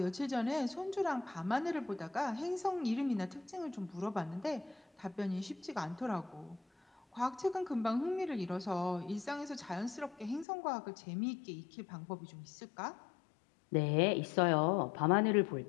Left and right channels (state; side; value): drops out; right; at 10.5 s